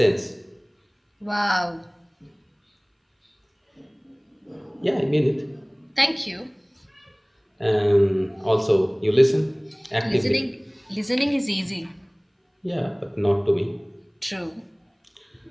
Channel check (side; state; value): both; identical; correlation 1.00